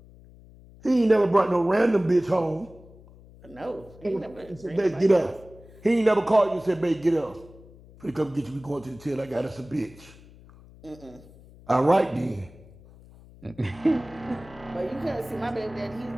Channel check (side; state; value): left; noise; hum, 22 dB below the sound